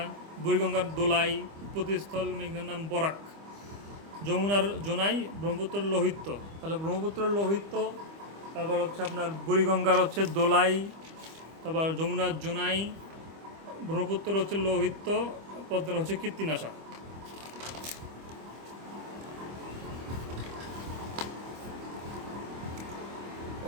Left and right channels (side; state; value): left; late; 25 ms